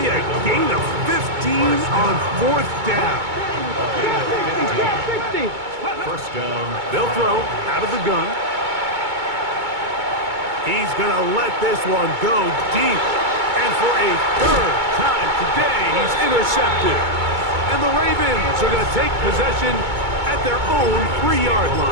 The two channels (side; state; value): left; late; 2.2 ms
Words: a gain of 15 on fourth down. First down. They'll throw out of the gun. He's going to let this one go deep. And for a third time today, he's intercepted. And the Ravens are going to take possession at their own 3-yard